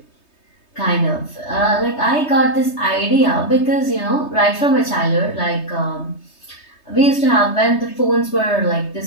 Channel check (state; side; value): late; right; 3.2 ms